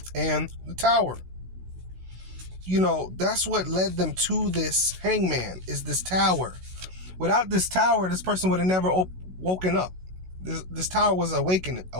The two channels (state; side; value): late; left; 16 ms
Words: and the Tower. That's what led them to this Hangman, is this tower. Without this tower, this person would have never woken up. This tower was an